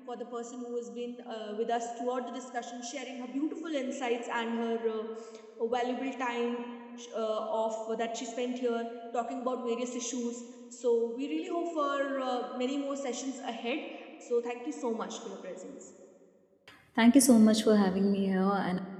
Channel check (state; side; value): identical; both; correlation 1.00